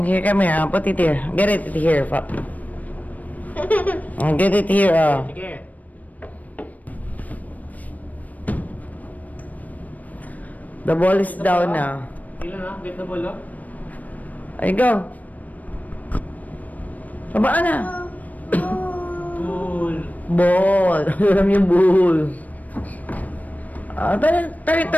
Here, come here. Put it here. Get it here. Get it here. Sige. The ball is down now. Ilan na? Get the ball, oh. Ay, go. Babaan na. Ball. Ball. Alam yung ball. Turn.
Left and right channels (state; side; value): late; right; 0.075 ms